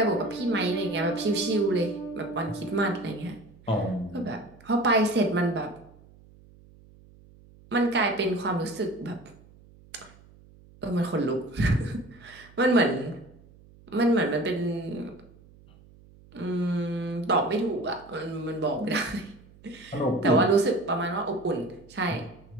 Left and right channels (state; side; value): noise; right; hum, 25 dB below the sound